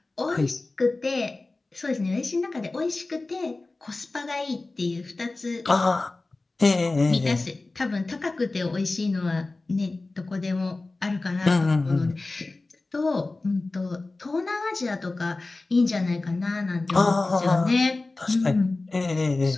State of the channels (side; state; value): right; quieter; 3.3 dB